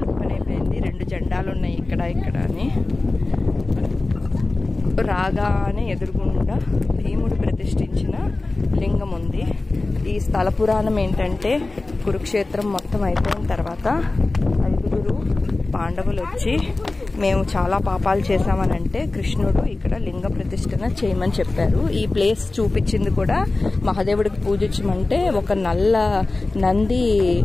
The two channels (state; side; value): quieter; right; 3.2 dB